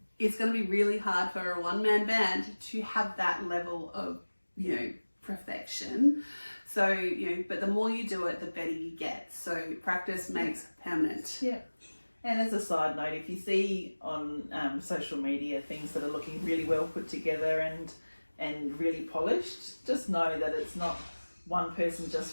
it's going to be really hard for a one-man band to have that level of, perfection. So, but the more you do it, the better you get. So practice makes permanent. Yeah. And as a side note, if you see on social media things that are looking really well put together and really polished, just know that it's not one person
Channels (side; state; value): both; inverted; correlation -1.00